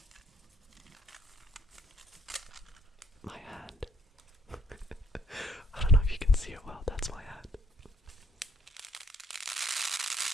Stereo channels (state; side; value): normal; both; correlation 0.66